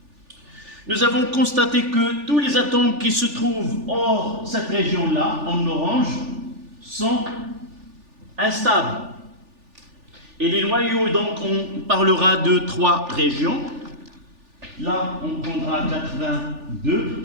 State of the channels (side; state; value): left; late; 3.4 ms